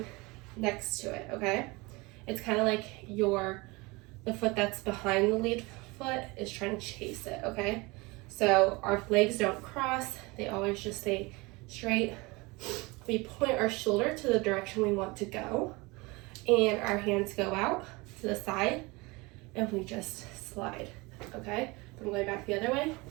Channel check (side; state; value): left; quieter; 24.6 dB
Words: next to it, okay? It's kind of like the foot that's behind the lead foot is trying to chase it, okay? So our legs don't cross, they always just stay straight. We point our shoulder to the direction we want to go, and our hands go out to the side, and we just slide, okay? If I'm going back the other way,